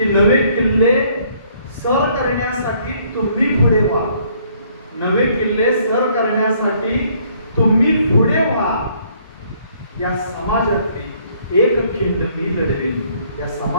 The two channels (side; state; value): both; inverted; correlation -0.64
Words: नवे किल्ले सर करण्यासाठी तुम्ही पुढे व्हा. नवे किल्ले सर करण्यासाठी तुम्ही पुढे व्हा. या समाजातली एक खिंड मी लढवीन. या